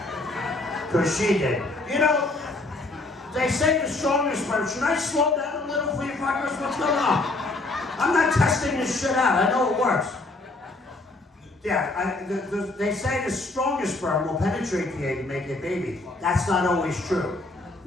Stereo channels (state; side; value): quieter; right; 3.0 dB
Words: Because she did. You know, they say the strongest sperm. Should I slow down a little for you fuckers? What's going on? I'm not testing this shit out. I know it works. Yeah, they say the strongest sperm will penetrate the egg and make a baby. That's not always true.